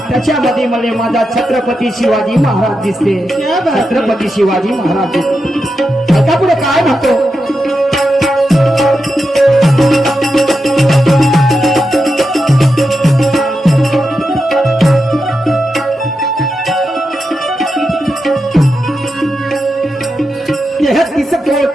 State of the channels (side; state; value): both; normal; correlation 0.88